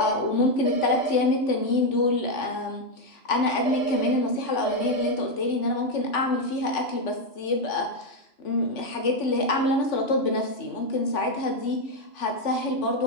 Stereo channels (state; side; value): late; right; 3.5 ms